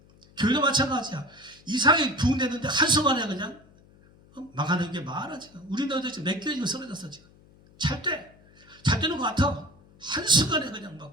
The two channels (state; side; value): noise; left; hum, 27 dB below the sound